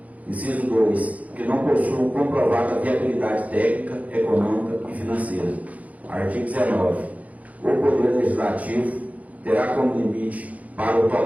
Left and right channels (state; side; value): late; left; 0.071 ms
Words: Inciso 2. Que não possuam comprovada viabilidade técnica, econômica e financeira. Artigo 19. O Poder Legislativo terá como limite para o